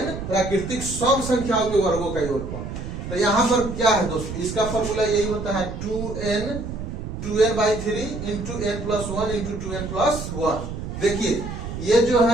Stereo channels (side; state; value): right; noise; rumble, 7 dB below the sound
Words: प्राकृतिक सम संख्याओं के वर्गों का योगफल। तो यहाँ पर क्या है दोस्तों, इसका फॉर्मूला यही होता है 2n/3 into n plus 1 into 2n plus 1। देखिए ये जो